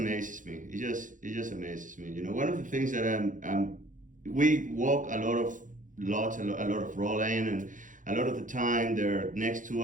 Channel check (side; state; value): left; late; 0.38 ms